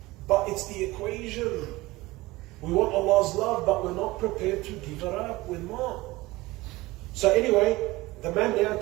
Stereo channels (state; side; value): quieter; left; 20.0 dB